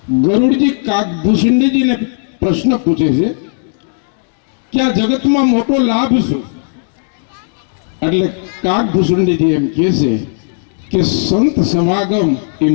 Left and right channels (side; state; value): right; silent; digital silence